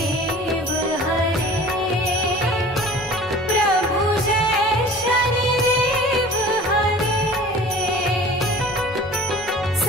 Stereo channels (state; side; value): normal; both; correlation 0.43